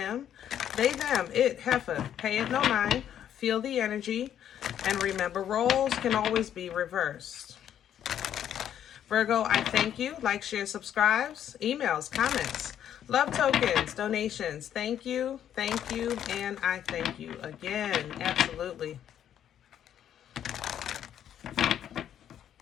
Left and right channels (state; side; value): quieter; right; 10.1 dB